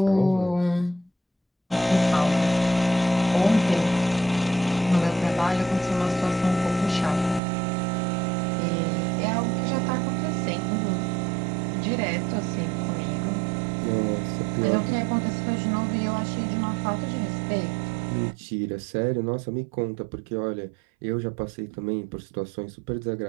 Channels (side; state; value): left; drops out; at 7.4 s